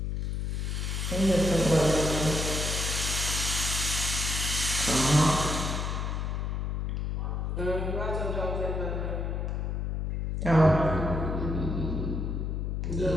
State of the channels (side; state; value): left; noise; hum, 1 dB below the sound